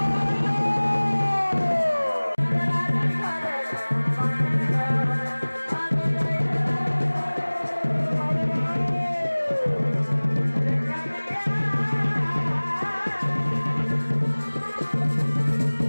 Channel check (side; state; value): both; inverted; correlation -1.00